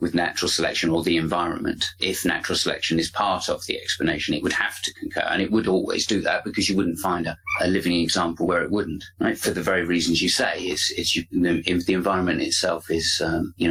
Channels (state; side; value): identical; both; correlation 1.00